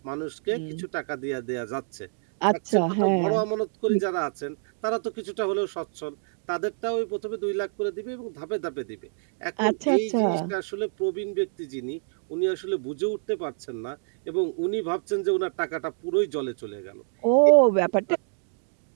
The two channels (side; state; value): left; silent; digital silence